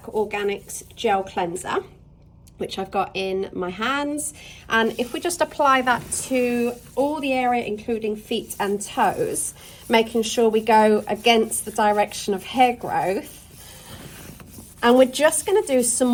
Organics Gel Cleanser, which I've got in my hands. And if we just apply that to all the area, including feet and toes, making sure we go against the direction of hair growth. And we're just going to do some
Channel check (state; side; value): identical; both; correlation 1.00